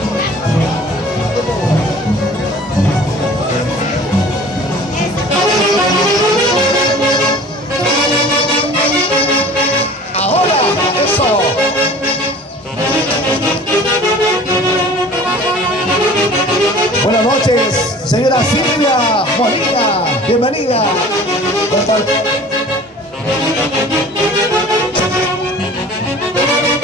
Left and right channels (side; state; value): both; normal; correlation 0.45